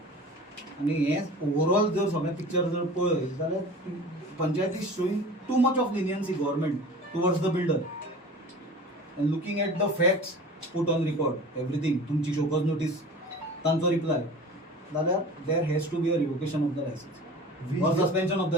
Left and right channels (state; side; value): normal; both; correlation 0.39